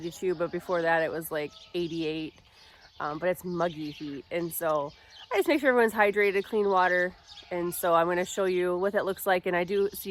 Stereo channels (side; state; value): both; identical; correlation 1.00